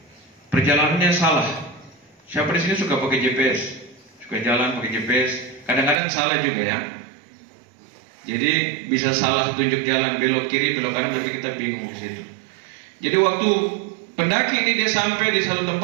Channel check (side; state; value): left; drops out; at 6.0 s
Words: Perjalanannya salah. Siapa di sini suka pakai GPS? Suka jalan pakai GPS? Kadang-kadang salah juga ya. Jadi bisa salah tunjuk jalan, belok kiri, belok kanan, nanti kita bingung di situ. Jadi waktu pendaki ini dia sampai di satu